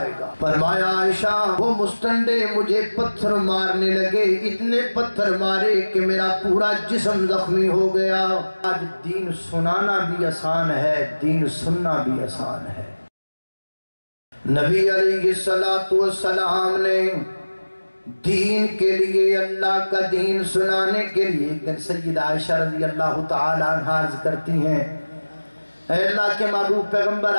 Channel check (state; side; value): inverted; both; correlation -1.00